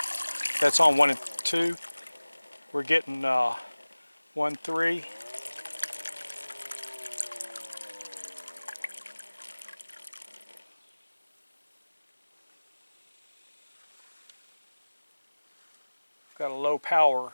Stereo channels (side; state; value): both; inverted; correlation -1.00